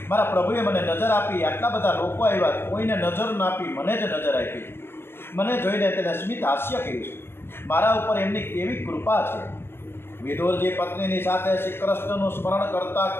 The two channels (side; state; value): right; late; 0.11 ms